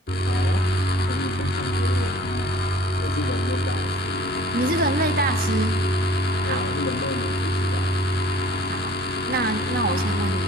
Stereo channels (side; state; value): both; normal; correlation 0.51